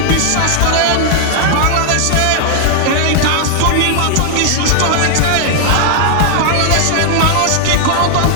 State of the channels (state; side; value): different; both; correlation -0.01